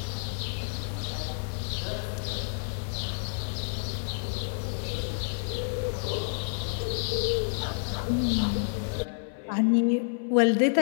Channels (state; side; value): silent; right; 58 dB below the other